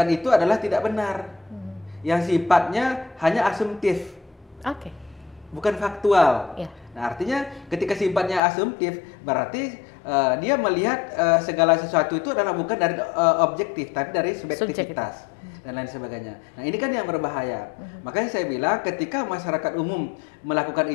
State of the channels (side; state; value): right; drops out; at 8.4 s